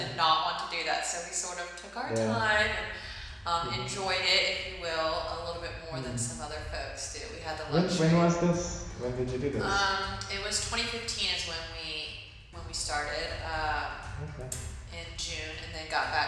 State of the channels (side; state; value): both; identical; correlation 1.00